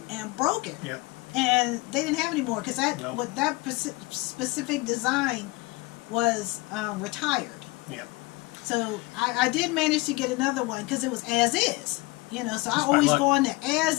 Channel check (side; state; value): right; quieter; 23.0 dB